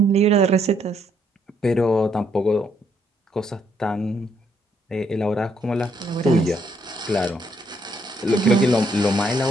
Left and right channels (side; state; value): both; normal; correlation 0.72